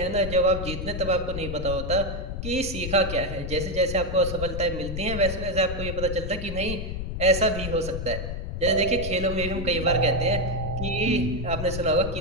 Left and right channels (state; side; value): noise; left; rumble, 5 dB below the sound